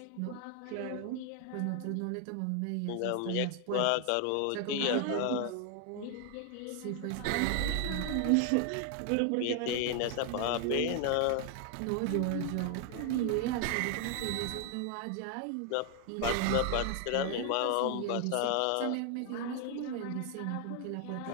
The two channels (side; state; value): both; different; correlation 0.00